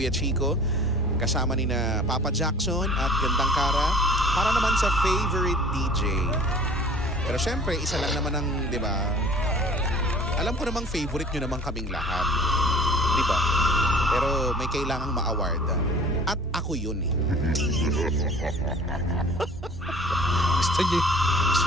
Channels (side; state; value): both; normal; correlation 0.48